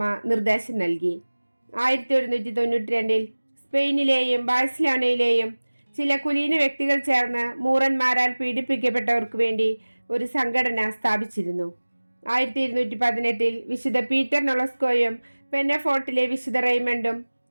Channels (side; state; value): both; inverted; correlation -1.00